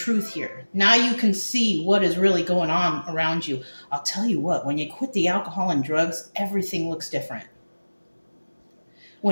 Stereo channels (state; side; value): inverted; both; correlation -1.00